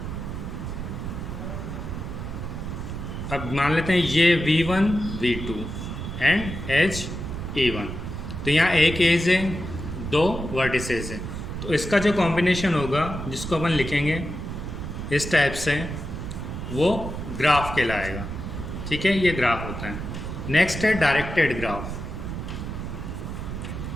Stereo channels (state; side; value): noise; right; rumble, 6 dB below the sound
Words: अब मान लेते हैं ये V1 V2 and as E1। तो यहाँ एक एज है, 2 वर्टिसेस है। तो इसका जो कॉम्बिनेशन होगा, जिसको अपन लिखेंगे इस टाइप से, वो ग्राफ कहलाएगा, ठीक है। ये ग्राफ होता है। नेक्स्ट है डायरेक्टेड ग्राफ।